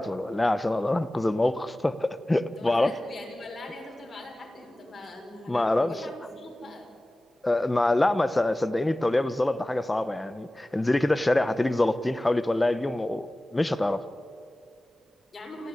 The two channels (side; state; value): both; normal; correlation 0.97